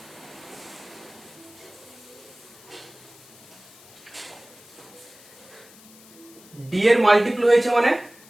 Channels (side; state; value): left; noise; hiss, 22 dB below the sound